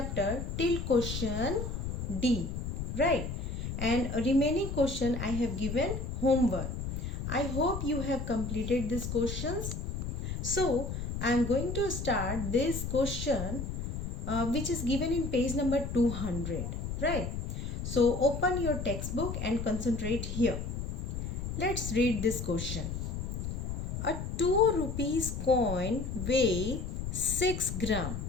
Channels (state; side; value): noise; left; rumble, 4 dB below the sound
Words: till question D, right? And a remaining question I have given homework. I hope you have completed these questions. So, I am going to start this question which is given in page number 200, right? So open your textbook and concentrate here. Let's read this question. A 2 rupees coin weighs 6 gram.